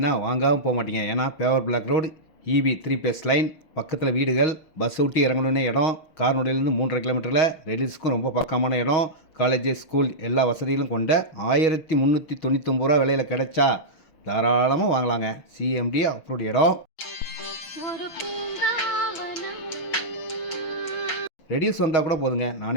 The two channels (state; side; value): late; right; 6.3 ms